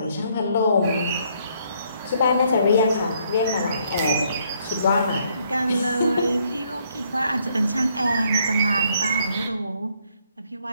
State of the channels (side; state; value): both; inverted; correlation -0.69